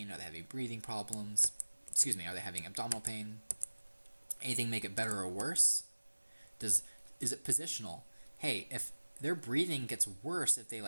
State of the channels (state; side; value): inverted; both; correlation -1.00